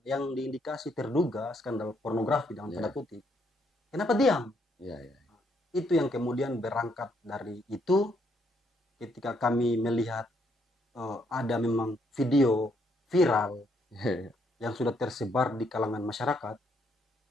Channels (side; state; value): both; normal; correlation 0.72